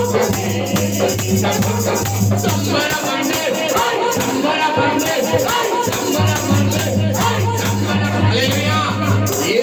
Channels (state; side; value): identical; both; correlation 1.00